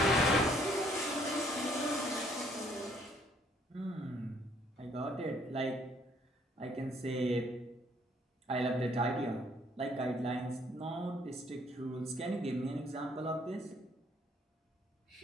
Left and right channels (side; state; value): both; normal; correlation 0.64